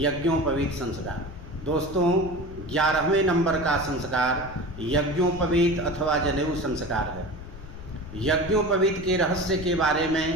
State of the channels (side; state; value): left; noise; rumble, 13 dB below the sound